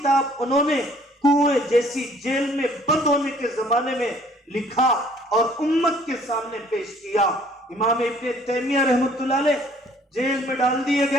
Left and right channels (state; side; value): normal; both; correlation 0.58